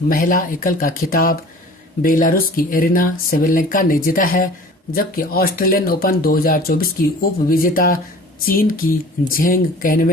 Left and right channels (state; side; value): normal; both; correlation 0.45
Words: महिला एकल का खिताब बेलारूस की एरिना सेवेलेंका ने जीता है, जबकि ऑस्ट्रेलियन ओपन 2024 की उप विजेता चीन की झेंग